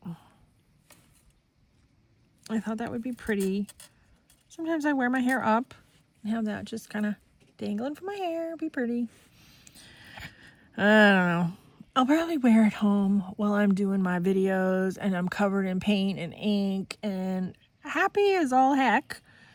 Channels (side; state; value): both; identical; correlation 1.00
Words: I thought that would be pretty. Sometimes I wear my hair up and have that just kind of dangling from my hair. Be pretty. I don't know. I'll probably wear it home while I'm doing my videos and I'm covered in paint and ink and happy as all heck,